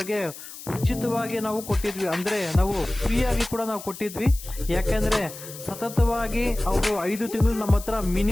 ಉಚಿತವಾಗಿ ನಾವು ಕೊಟ್ಟಿದ್ವಿ. ಅಂದ್ರೆ ನಾವು ಫ್ರೀ ಆಗಿ ಕೂಡ ನಾವು ಕೊಟ್ಟಿದ್ವಿ. ಯಾಕೆಂದ್ರೆ ಸತತವಾಗಿ ಅವರು 5 ತಿಂಗಳು ನಮ್ಮ ಹತ್ರ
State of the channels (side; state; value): left; noise; hiss, 14 dB below the sound